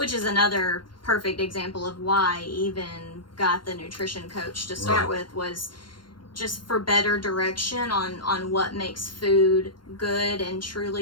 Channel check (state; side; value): late; right; 0.72 ms